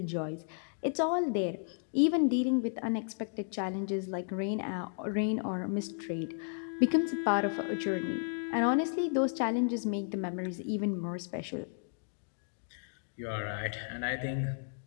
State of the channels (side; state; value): right; silent; digital silence